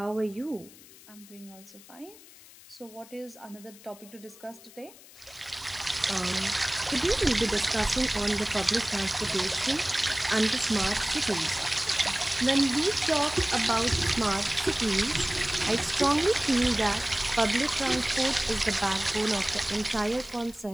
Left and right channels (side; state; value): left; noise; hiss, 21 dB below the sound